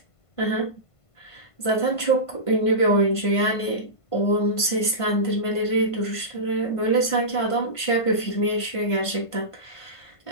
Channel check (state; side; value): late; right; 1.5 ms